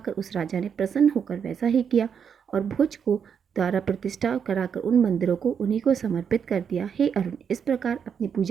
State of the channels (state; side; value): quieter; left; 7.3 dB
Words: उस राजा ने प्रसन्न होकर वैसा ही किया और भोज को द्वारा प्रतिष्ठा कराकर उन मंदिरों को उन्हीं को समर्पित कर दिया। हे अरुण, इस प्रकार अपनी